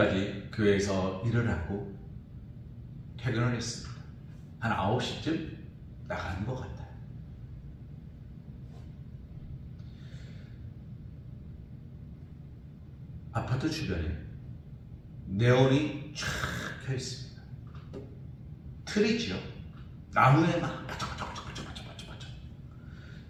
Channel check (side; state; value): both; identical; correlation 1.00